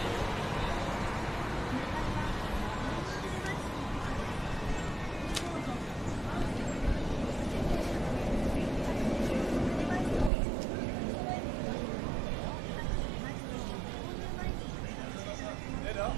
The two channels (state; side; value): drops out; left; at 10.3 s